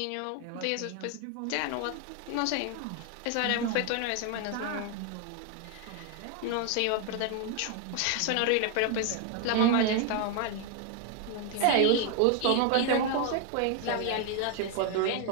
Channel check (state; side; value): different; both; correlation 0.00